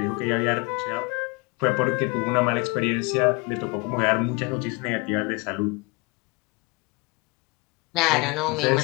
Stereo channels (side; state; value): right; quieter; 27.3 dB